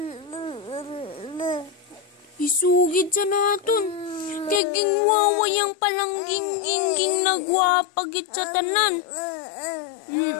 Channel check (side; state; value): right; drops out; at 4.6 s